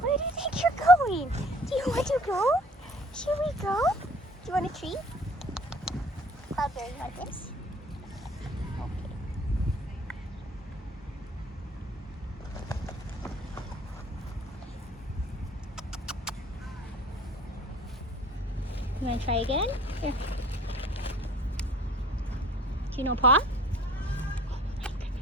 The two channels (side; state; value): both; normal; correlation 0.52